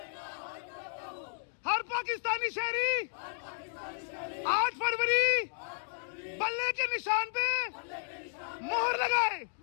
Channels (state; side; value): silent; right; digital silence